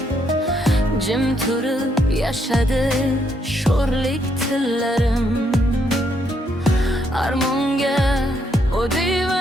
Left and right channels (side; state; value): both; normal; correlation 0.74